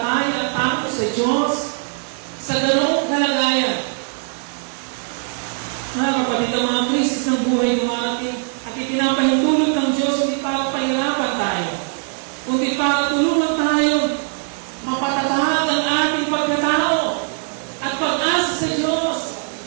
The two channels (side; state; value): left; silent; 57 dB below the other